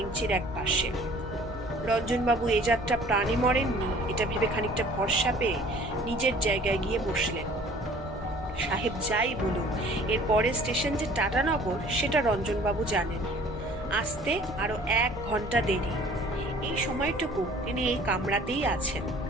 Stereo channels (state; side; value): normal; both; correlation 0.51